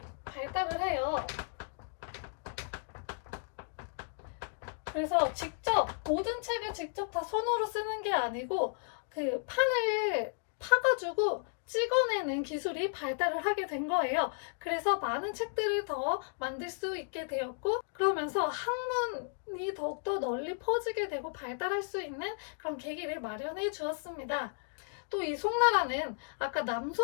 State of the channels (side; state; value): right; silent; digital silence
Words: 발달을 해요. 그래서 직접 모든 책을 직접 다 손으로 쓰는 게 아니고 그 판을 파가지고 찍어내는 기술이 발달을 하게 된 거예요. 그래서 많은 책들을 더 만들 수 있게 되었고 그러면서 학문이 더욱더 널리 퍼지게 되고 발달할 수 있는 그런 계기를 마련해 주었습니다. 또 이 송나라는 아까